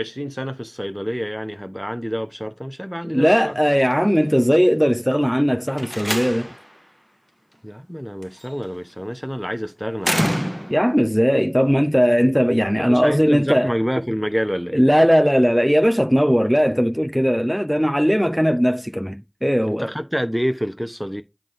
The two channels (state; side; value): identical; both; correlation 1.00